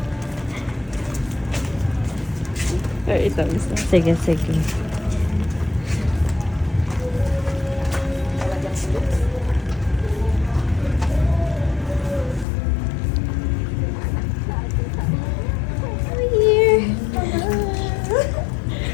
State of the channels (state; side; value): drops out; right; at 12.5 s